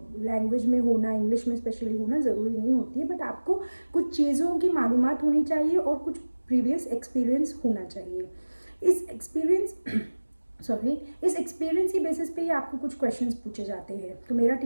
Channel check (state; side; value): inverted; both; correlation -1.00